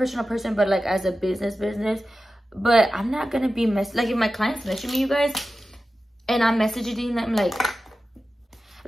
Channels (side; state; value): both; normal; correlation 0.94